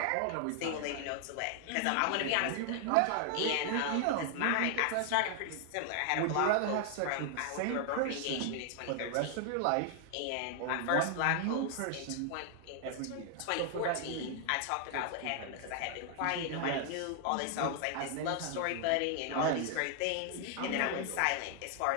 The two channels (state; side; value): different; both; correlation 0.00